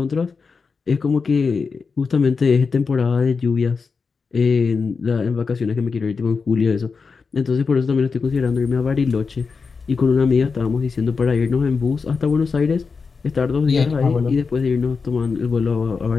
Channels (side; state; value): right; quieter; 5.0 dB